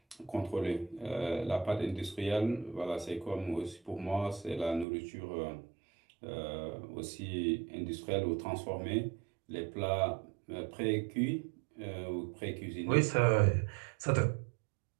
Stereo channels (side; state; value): left; drops out; at 4.9 s